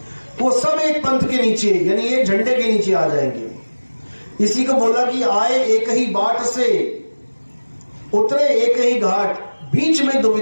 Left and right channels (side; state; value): both; inverted; correlation -1.00